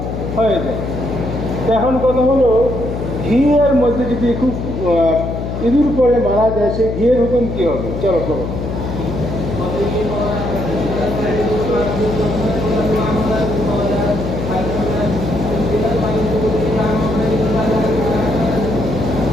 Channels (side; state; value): left; noise; hum, 5 dB below the sound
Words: হয়ে যায়। এখন কথা হলো, ঘিয়ের মধ্যে যদি খুব ইঁদুর পরে মারা যায়, সেই ঘিয়ের হুকুম কি হবে? চলো করো।